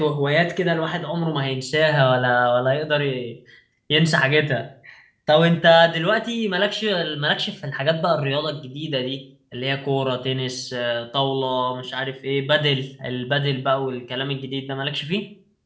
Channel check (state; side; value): identical; both; correlation 1.00